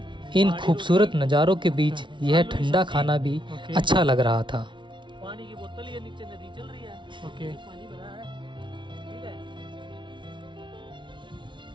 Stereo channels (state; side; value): late; left; 0.24 ms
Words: इन खूबसूरत नज़ारों के बीच यह ठंडा खाना भी अच्छा लग रहा था। पानी की बोतल ये नीचे नदी चल रही है, ओके पानी भरा है, ठीक है।